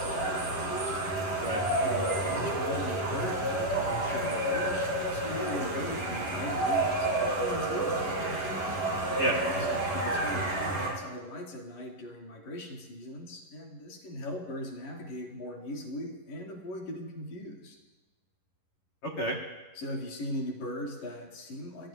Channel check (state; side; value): late; right; 11 ms